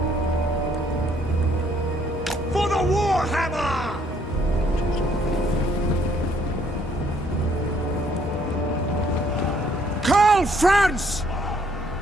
For the Warhammer! Call France!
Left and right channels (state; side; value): normal; both; correlation 0.66